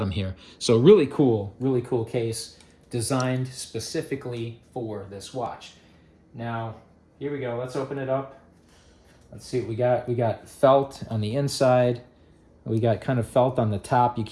here. So really cool case designed specifically for this watch. Now, here we go, let's open it up. Let's see what we got. We got felt on the inside. We got kind of felt on the top. You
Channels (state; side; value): identical; both; correlation 1.00